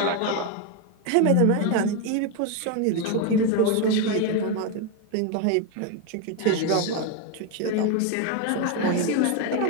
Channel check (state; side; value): different; both; correlation 0.02